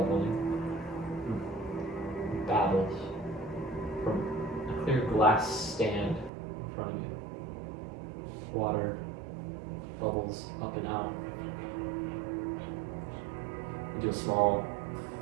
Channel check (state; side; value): drops out; left; at 6.3 s